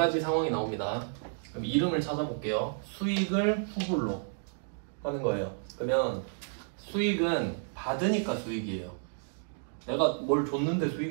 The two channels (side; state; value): left; silent; digital silence